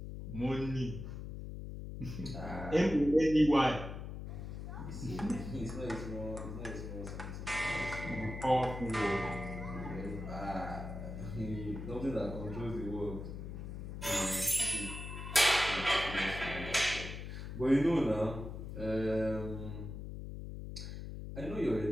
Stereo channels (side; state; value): left; noise; hum, 7 dB below the sound